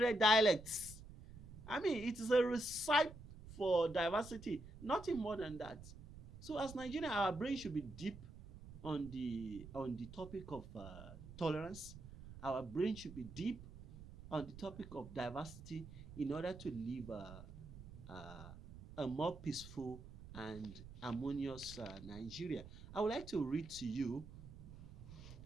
dialects. I mean, it is a recipe for diversity, nothing more than that. So as Nigeria, our brain should be deep on the topic of tolerance. Our brain should be deep on the topic of diversity, in order to live a more peaceful and harmonious Nigeria. I would like to read to you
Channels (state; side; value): noise; right; rumble, 14 dB below the sound